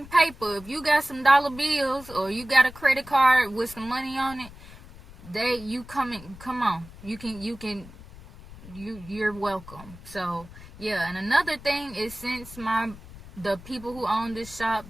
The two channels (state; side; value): noise; left; rumble, 18 dB below the sound